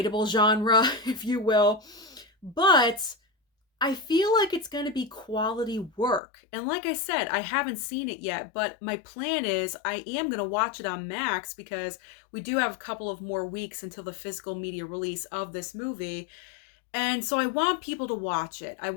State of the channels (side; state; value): right; drops out; at 6.2 s